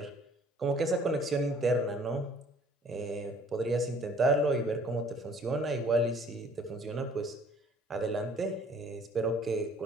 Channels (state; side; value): normal; both; correlation 0.56